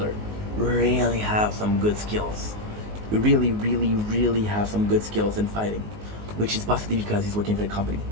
really have some good skills. Really, really, really have some good skills in fighting, which is possibly because he's working for the company,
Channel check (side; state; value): left; late; 19 ms